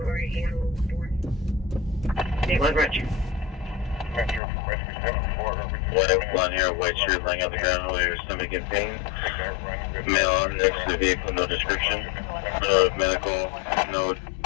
One here, white shirt laying on the ground with your stomach in pain. Male next to the vehicle, no description. No medical, no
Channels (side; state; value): right; drops out; at 4.4 s